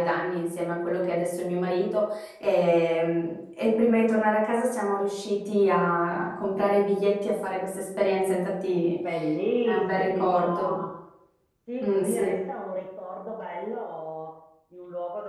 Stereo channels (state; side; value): identical; both; correlation 1.00